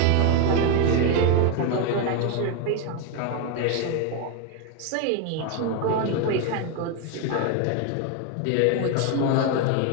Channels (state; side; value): different; both; correlation 0.01